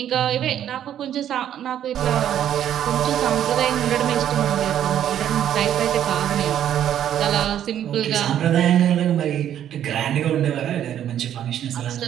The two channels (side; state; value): left; quieter; 10.5 dB